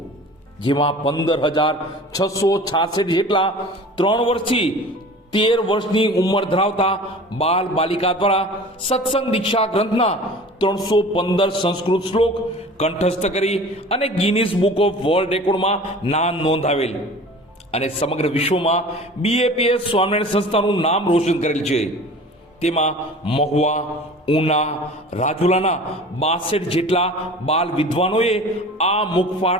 જેમાં 15,666 જેટલા 3 વર્ષથી 13 વર્ષની ઉંમર ધરાવતા બાલ બાલિકા દ્વારા સત્સંગ દીક્ષા ગ્રંથના 315 સંસ્કૃત શ્લોક કંઠસ્થ કરી અને ગિનિસ બુક ઓફ વર્લ્ડ રેકોર્ડમાં નામ નોંધાવેલ અને સમગ્ર વિશ્વમાં બીએપીએસ સ્વામિનારાયણ સંસ્થાનું નામ રોશન કરેલ છે. તેમાં મહુવા, ઉના, રાજુલાના 62 જેટલા બાલ વિદ્વાનોએ આ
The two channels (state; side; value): normal; both; correlation 0.41